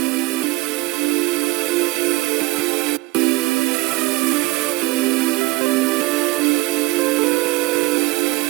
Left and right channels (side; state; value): left; quieter; 20.6 dB